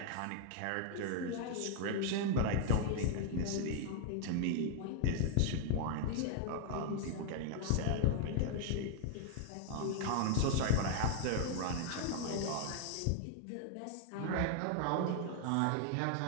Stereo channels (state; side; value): different; both; correlation 0.00